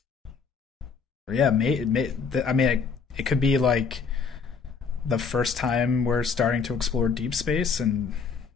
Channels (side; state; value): right; quieter; 5.5 dB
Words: Yeah, it could be like the first time we're starting to explore deep space, and